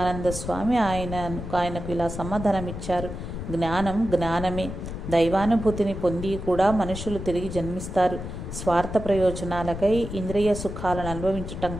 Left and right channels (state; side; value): noise; left; rumble, 7 dB below the sound